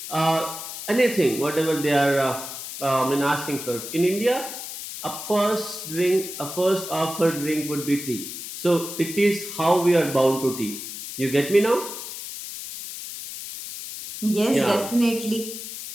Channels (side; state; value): left; noise; hiss, 9 dB below the sound